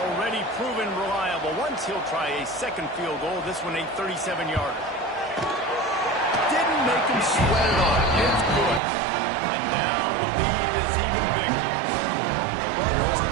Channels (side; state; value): left; drops out; at 8.8 s